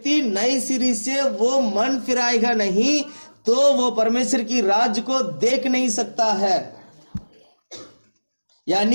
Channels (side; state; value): both; inverted; correlation -1.00